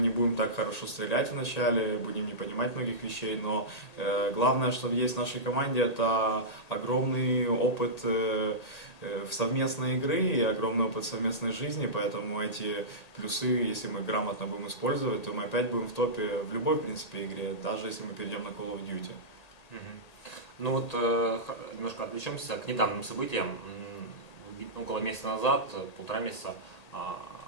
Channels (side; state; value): right; late; 1.8 ms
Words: не будем так хорошо стрелять вначале, будем не понимать многих вещей, но главное, что есть в нашей команде, это огромный опыт совместной игры и огромный опыт совместной жизни, поэтому эти плюсы, если мы грамотно будем использовать, то мы опять будем в топе в любой, в принципе, игре, даже если мы перейдем на Call of Duty. Ну вот немножко отвлечемся к недавним событиям. Около месяца назад, 1,5 месяца,